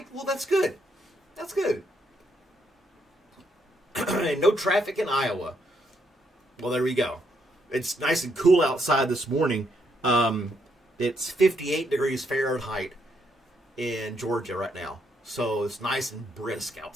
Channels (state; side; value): normal; both; correlation 0.75